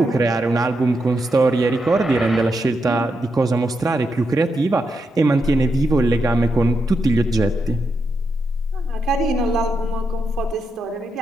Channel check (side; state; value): both; normal; correlation 0.84